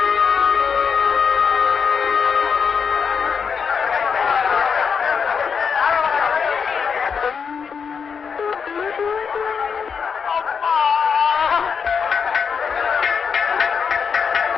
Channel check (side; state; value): right; quieter; 6.3 dB